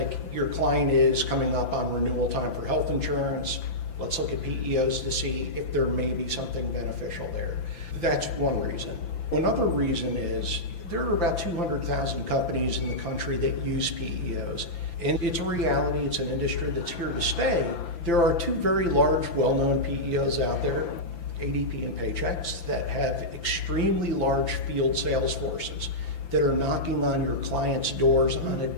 your client is coming up on renewal time for health insurance. Let's look at PEOs to see if there may be something beneficial there. That's one reason. Another reason is there are about 200,000 companies in the country that use PEOs. And it's a reality, it's an industry that's here to stay. There are two very large, well-known PEOs out there, ADP and Paychex, that have extremely large field sales forces that are knocking on your clients' doors on a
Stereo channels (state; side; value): late; right; 5.9 ms